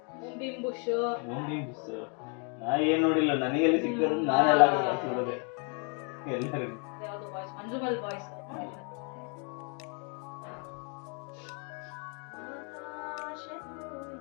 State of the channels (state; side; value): quieter; right; 38.0 dB